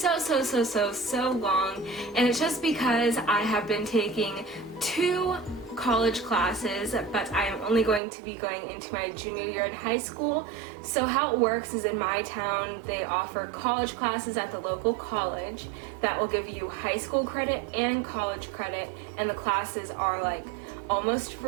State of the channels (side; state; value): left; drops out; at 8.0 s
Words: long, and it's just because I have been taking 2 college classes, but I am only going to be going into my junior year in high school. So how it works is in my town they offer college classes at the local college that will give you high school credit and college credit, and the classes are like almost